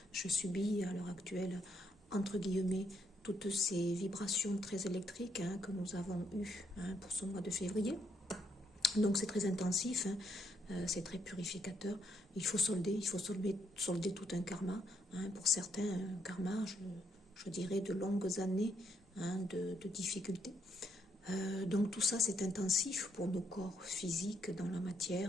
je subis à l'heure actuelle, entre guillemets, toutes ces vibrations très électriques, hein, que nous avons eues, hein, pour ce mois de février. Donc c'est très intensif, hein, c'est très purificateur. Il faut solder tout un karma, hein. Pour certains, un karma, je dirais, de longues années, hein, de difficultés. Donc tout ça, c'est intensif pour nos corps physiques dans la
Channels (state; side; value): normal; both; correlation 0.74